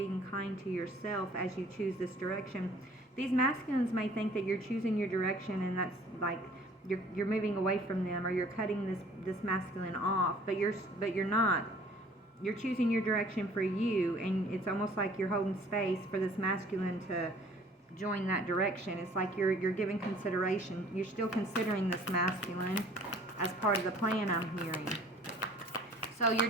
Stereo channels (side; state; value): both; normal; correlation 0.53